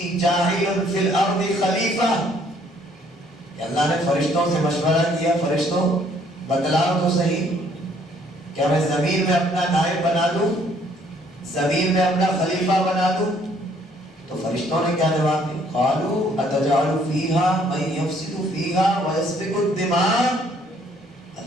جَاعِلٌ فِي الْأَرْضِ خَلِيفَةً، کہ اللہ نے فرشتوں سے مشورہ کیا، فرشتوں بتلاؤ تو صحیح، کیا میں زمین میں اپنا نائب بنا دوں، زمین میں اپنا خلیفہ بنا دوں؟ تو فرشتوں نے کیا جواب دیا؟ قالوا اتجعل فیہا من یفسد فیہا ویسفک الدماء،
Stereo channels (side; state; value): both; normal; correlation 0.64